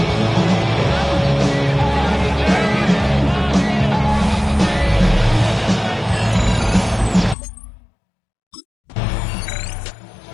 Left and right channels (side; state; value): right; drops out; at 7.4 s